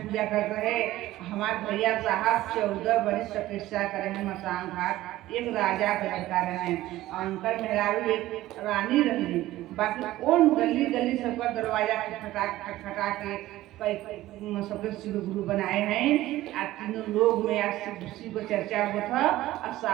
पूजा करते हैं, हमारे भैया साहब 14 वर्ष तपस्या करे हैं मसान घाट, एक राजा का लड़का रहे और उनका मेहरारू एक रानी रही। बाकी कौन गली गली सबका दरवाजा खटखटा के सबके शिव गुरु बनाए हैं। आज तीनों लोग में आज शिव को चर्चा हुआ था और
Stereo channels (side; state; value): left; quieter; 15.8 dB